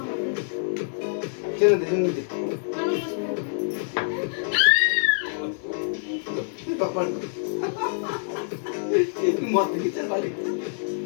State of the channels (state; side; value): silent; right; digital silence